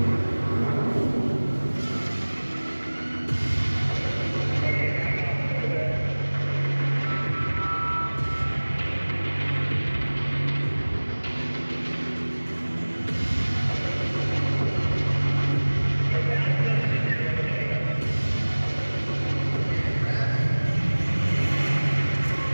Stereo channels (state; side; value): inverted; both; correlation -1.00